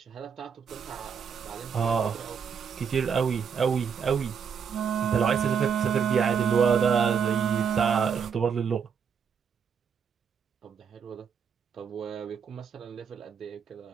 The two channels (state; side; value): quieter; left; 6.9 dB